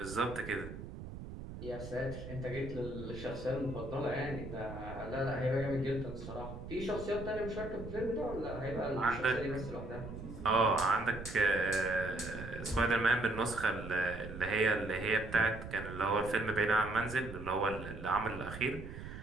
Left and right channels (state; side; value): noise; right; rumble, 10 dB below the sound